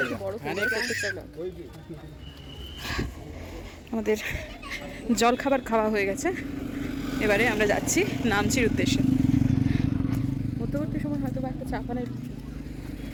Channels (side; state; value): both; identical; correlation 1.00